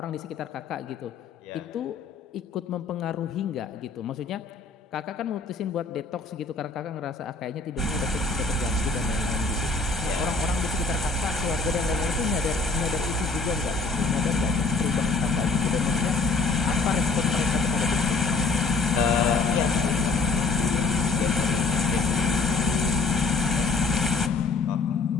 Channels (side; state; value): right; quieter; 3.9 dB